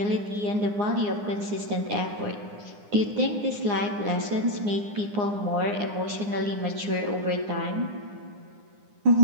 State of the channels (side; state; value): left; late; 9.8 ms